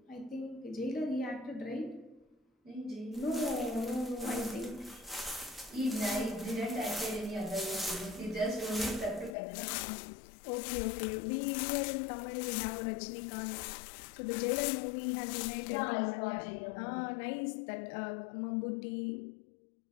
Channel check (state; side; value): drops out; right; at 9.3 s